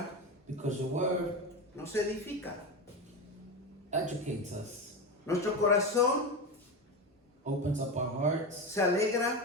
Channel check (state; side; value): normal; both; correlation 0.19